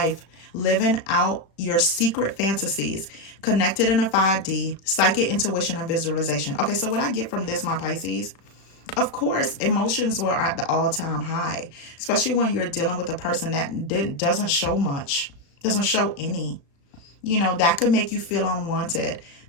living out your secret fantasies, connected in a 5D, psychic intuition and visualization. Okay, so what I get from this, my Pisces, of course, emotions were at the all-time high, especially when you're dealing with a person that doesn't show much, doesn't show any. That could make you feel unwanted.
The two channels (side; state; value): right; late; 35 ms